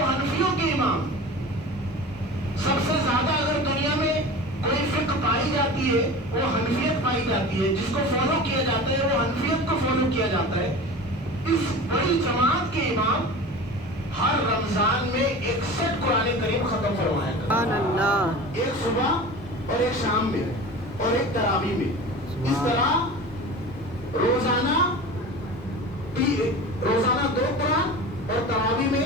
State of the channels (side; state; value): both; normal; correlation 0.34